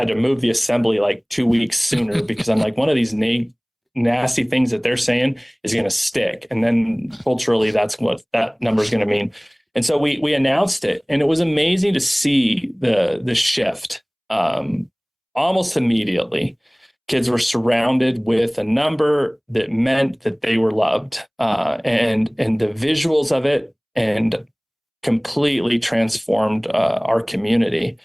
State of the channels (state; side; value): identical; both; correlation 1.00